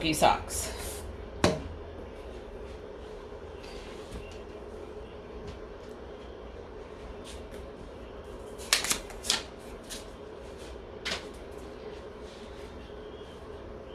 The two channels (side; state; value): both; identical; correlation 1.00